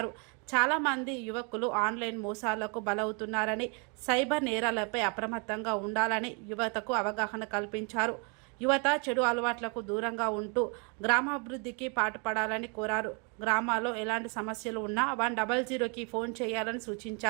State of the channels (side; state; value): left; quieter; 35.1 dB